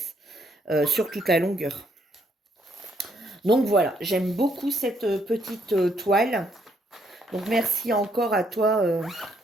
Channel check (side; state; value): both; normal; correlation 0.72